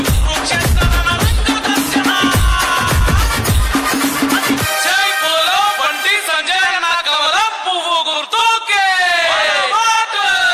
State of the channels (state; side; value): identical; both; correlation 1.00